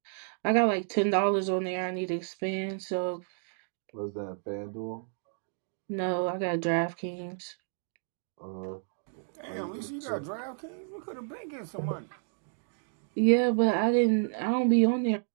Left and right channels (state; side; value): silent; left; digital silence